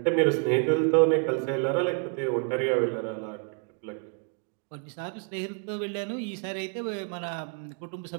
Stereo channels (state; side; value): quieter; left; 39.6 dB